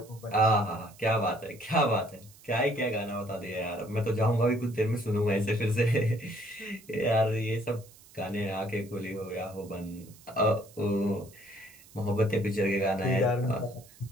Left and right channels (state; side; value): noise; right; hiss, 24 dB below the sound